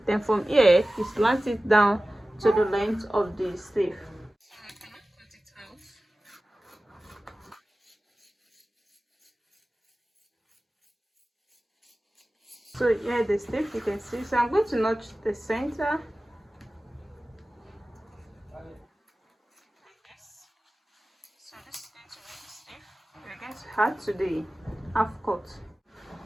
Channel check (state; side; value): normal; both; correlation 0.96